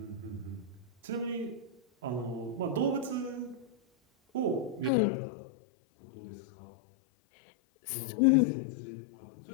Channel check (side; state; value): right; drops out; at 4.9 s